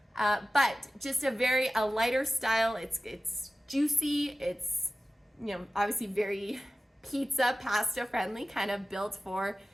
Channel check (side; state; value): both; normal; correlation 0.96